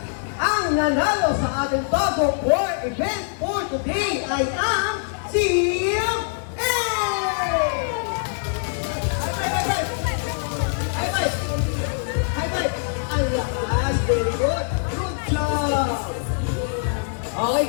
Ang nanalo sa ating Togo War event for today ay ang Team A! High five! High five! High five! Ang lakas! Very good! Good job! Okay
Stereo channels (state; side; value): silent; right; digital silence